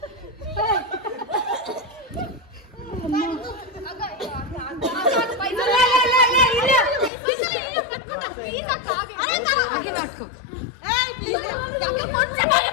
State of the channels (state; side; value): drops out; right; at 7.1 s